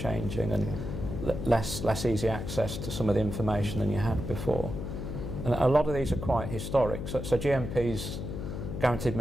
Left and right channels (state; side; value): noise; left; hum, 5 dB below the sound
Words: and less easy access to some of the information than you had before. And a lot of these are quite historic. So GMPs, guaranteed